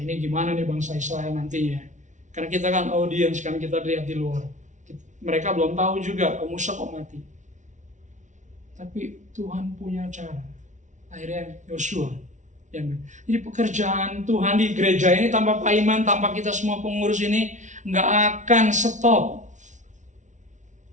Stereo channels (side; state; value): left; late; 0.36 ms